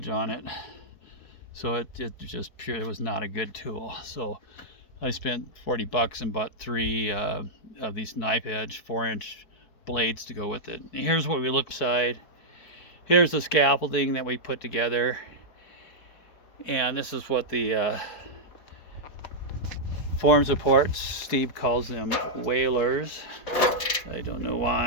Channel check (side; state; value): right; late; 4.6 ms